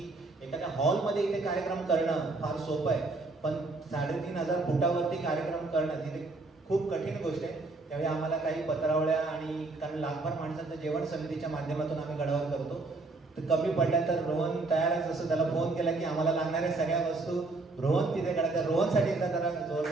एखाद्या हॉलमध्ये इथे कार्यक्रम करणं फार सोपं आहे, पण 3500 फुटावरती कार्यक्रम करणं तिथे खूप कठीण गोष्ट आहे. त्यावेळी आम्हाला काही पत्रावळ्या आणि कारण लाखभर माणसांचं जेवण समितीच्या माध्यमातून आम्ही गडावर करतो, तर कमी पडल्या तर रोहन तयारच असं त्याला फोन केला की आम्हाला लागणाऱ्या सगळ्या वस्तू रोहन तिथे कळतात. रोहनसाठी एकदा जरा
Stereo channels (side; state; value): left; quieter; 3.4 dB